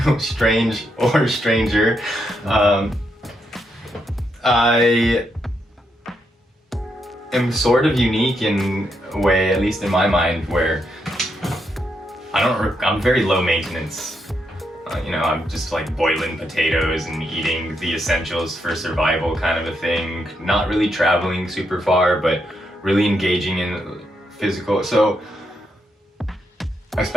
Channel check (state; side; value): normal; both; correlation 0.80